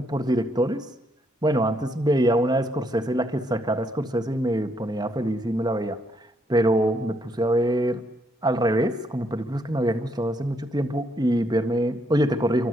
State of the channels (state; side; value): normal; both; correlation 0.74